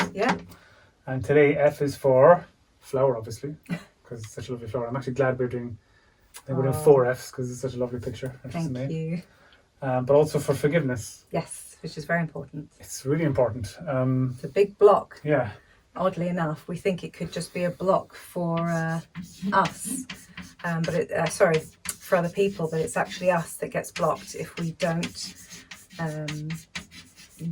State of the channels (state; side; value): identical; both; correlation 1.00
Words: Yeah. And today F is for flower, obviously, because it's such a lovely flower. I'm actually glad we're doing 4 F's because it's such a lovely picture. Thank you. But also for forgiveness. Yes, which is very important. It's really important. It's a big block. Yeah. Oddly enough, we think it could just be a block for us, for other people, but it's actually us that gets blocked if we don't